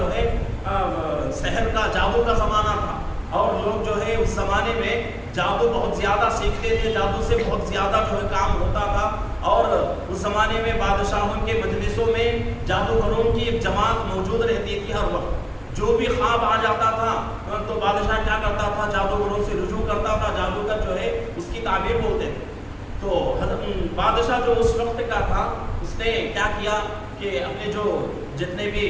ہے سحر کا، جادو کا زمانہ تھا، اور لوگ جو ہے اس زمانے میں جادو بہت زیادہ سیکھتے تھے، جادو سے بہت زیادہ جو ہے کام ہوتا تھا، اور اس زمانے میں بادشاہوں کے مجلسوں میں جادوگروں کی ایک جماعت موجود رہتی تھی ہر وقت۔ جو بھی خواب آ جاتا تھا تو بادشاہ کیا کرتا تھا، جادوگروں سے رجوع کرتا تھا، جادوگر جو ہے اس کی تعبیر بولتے تھے۔ تو بادشاہ جو اس وقت کا تھا اس نے کیا کیا کہ اپنے جو جتنے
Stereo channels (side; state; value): both; identical; correlation 1.00